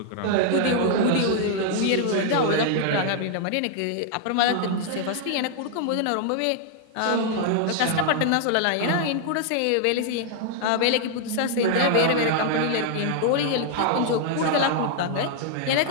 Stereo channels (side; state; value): both; different; correlation 0.00